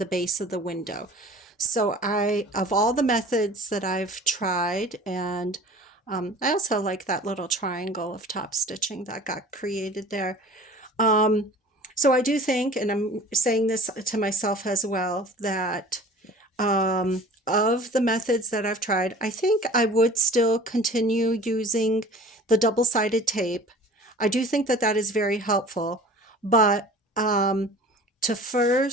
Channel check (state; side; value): normal; both; correlation 0.44